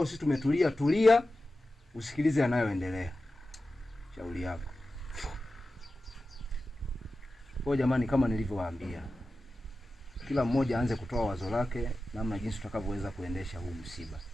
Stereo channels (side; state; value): both; normal; correlation 0.93